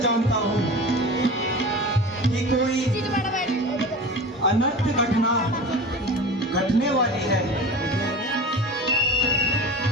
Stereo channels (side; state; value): both; normal; correlation 0.34